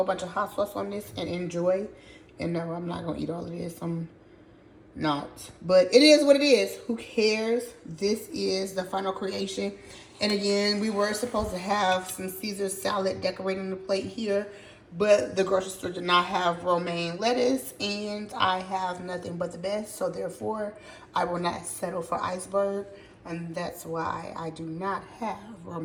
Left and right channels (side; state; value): both; identical; correlation 1.00